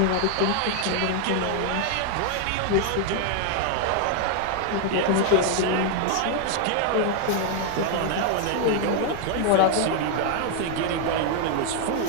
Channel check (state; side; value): different; both; correlation 0.00